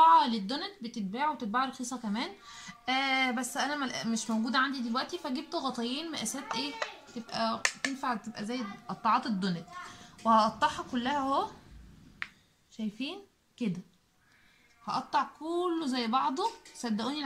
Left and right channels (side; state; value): both; identical; correlation 1.00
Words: للدونت بتتباع وتتباع رخيصه كمان. بس انا مش موجوده عندي دلوقتي، فجبت غطايين مقاسات ايه تبقى تنفع، تبقى زي قطاعات الدونت. وهقطعها كلها اهو. شايفين كده؟ هقطع كله زي بعضه. صدقوني